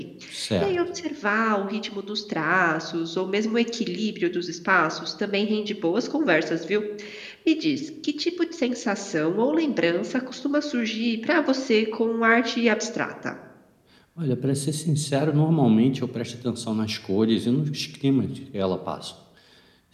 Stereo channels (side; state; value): both; identical; correlation 1.00